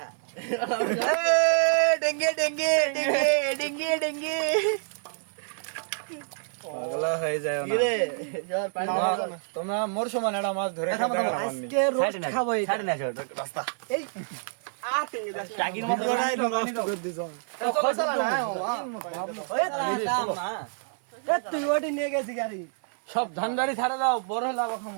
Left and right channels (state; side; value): silent; left; 56 dB below the other